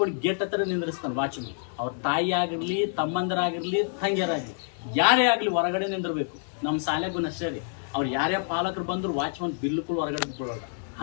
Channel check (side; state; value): right; silent; digital silence